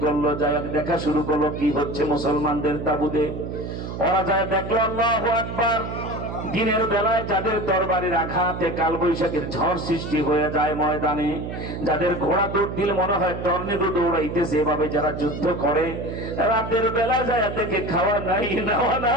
করলো, যাই দেখা শুরু করলো কি হচ্ছে মুসলমানদের তাবুতে। ওরা যায় দেখলো, আল্লাহু আকবার, দিনের বেলায় যাদের তরবারির আঘাতে কালবৈশাখীর ঝড় সৃষ্টি হয়ে যায় ময়দানে, যাদের ঘোড়া দৌড় দিলে মনে হয় টর্নেডো দৌড়াইতেছে, এভাবে যারা যুদ্ধ করে, রাতের বেলা যায় দেখে খাওয়া নাই, নেওয়া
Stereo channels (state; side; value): noise; right; hum, 7 dB below the sound